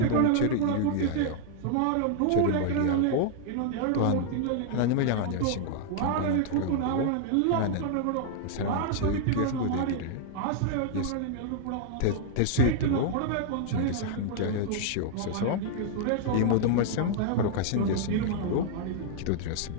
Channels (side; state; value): both; different; correlation -0.01